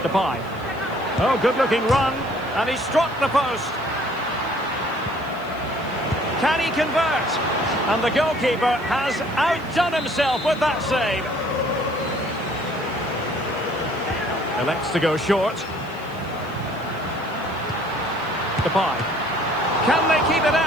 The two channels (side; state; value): right; noise; hiss, 26 dB below the sound